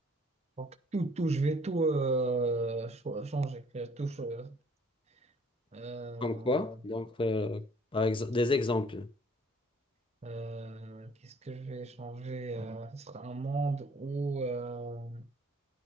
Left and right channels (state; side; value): normal; both; correlation 0.58